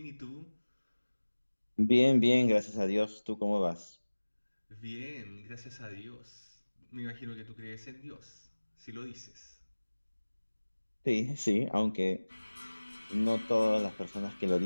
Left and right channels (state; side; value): inverted; both; correlation -1.00